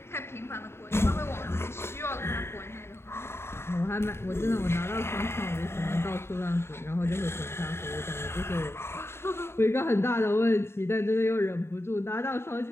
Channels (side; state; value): right; late; 0.12 ms